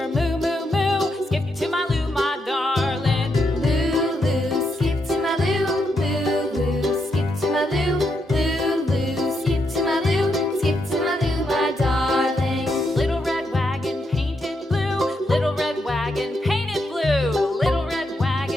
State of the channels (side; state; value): both; normal; correlation 0.81